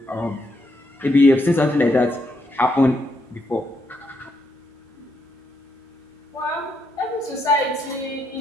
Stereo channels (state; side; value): normal; both; correlation 0.78